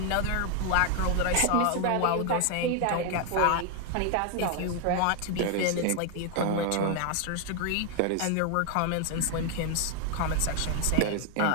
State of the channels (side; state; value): both; different; correlation 0.01